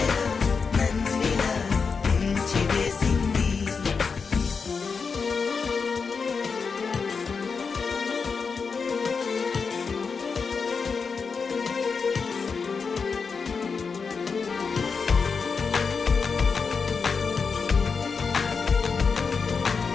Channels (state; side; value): quieter; right; 5.3 dB